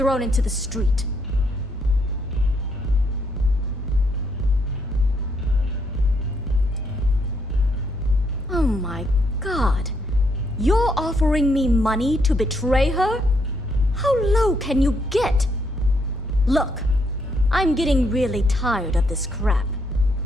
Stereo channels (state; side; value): normal; both; correlation 0.74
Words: into the street. Oh my god. You're offering me money to betray her? How low can you get? Look, I'm getting really tired of this crap.